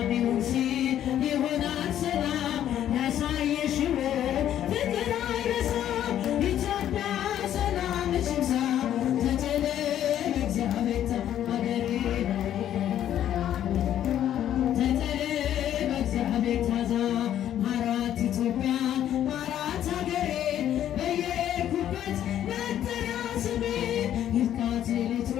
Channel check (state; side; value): quieter; right; 11.0 dB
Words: ይሁን ሲል ይሆናል ሰላም ያሳየሽው ፍቅር አይረሳም። ኢትዮጵያ ሰላም ሽምሳ ተጨለ እግዚአብሔር ሀገሬ ተጨለ በእግዚአብሔር ታዛ ማራት ኢትዮጵያ ማራት ሀገሬ በየኩበት መጠሪያ ስሜ ይብቃት ሌሊቱ